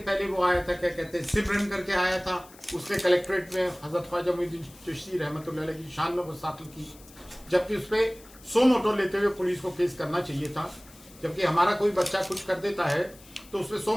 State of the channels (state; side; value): noise; left; hiss, 23 dB below the sound